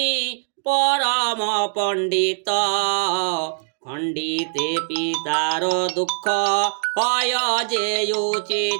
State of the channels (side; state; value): left; silent; digital silence